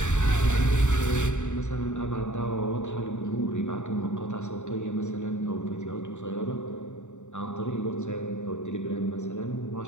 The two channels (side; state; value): right; late; 0.84 ms